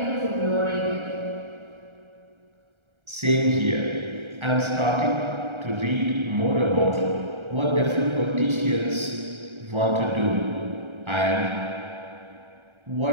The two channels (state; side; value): late; left; 1.3 ms